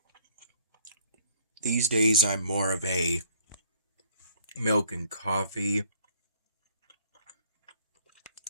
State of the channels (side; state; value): both; inverted; correlation -0.61